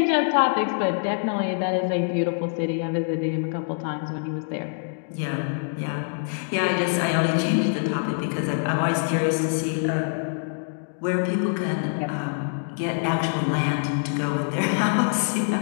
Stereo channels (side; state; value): right; silent; digital silence